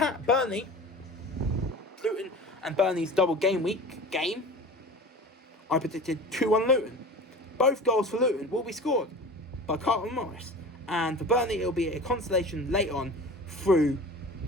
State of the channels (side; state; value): both; normal; correlation 0.37